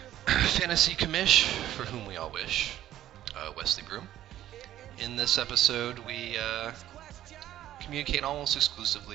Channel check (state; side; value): quieter; left; 12.8 dB